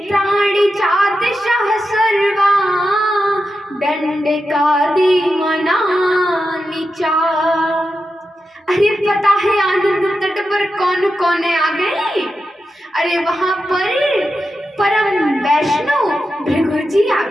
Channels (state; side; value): normal; both; correlation 0.89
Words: चातिशः सर्वा दण्डकादि वनानि च। अरे पता है आनंद तट पर कौन कौन आ गए। अरे वहां पर परम वैष्णव भृगु जी आ